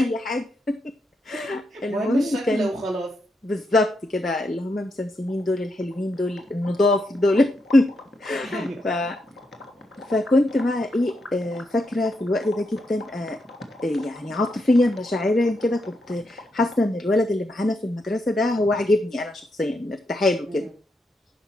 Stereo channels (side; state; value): both; normal; correlation 0.82